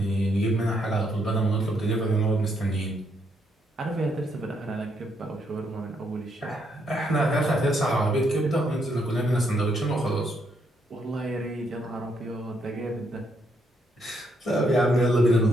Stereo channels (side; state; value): both; normal; correlation 0.74